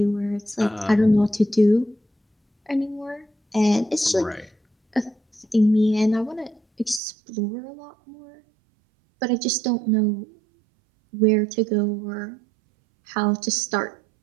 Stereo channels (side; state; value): left; drops out; at 7.0 s